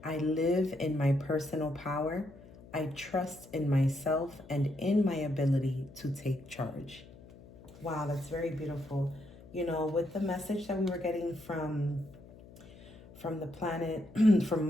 I live in my personal power. I trust in myself and in my ability to take charge. Wow, that's very beautiful. You know, with the message that we were getting from the planet, from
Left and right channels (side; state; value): left; noise; hum, 20 dB below the sound